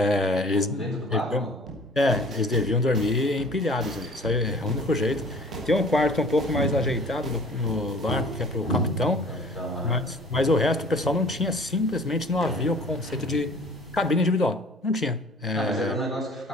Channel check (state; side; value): normal; both; correlation 0.49